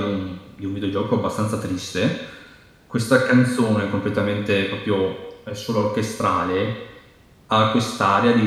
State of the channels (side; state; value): both; identical; correlation 1.00